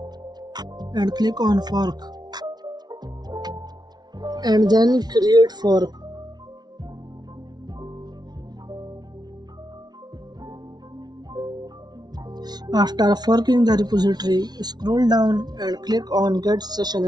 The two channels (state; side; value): late; left; 0.19 ms